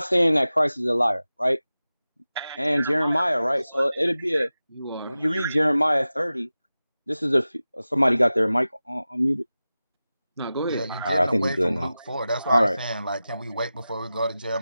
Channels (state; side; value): inverted; both; correlation -0.95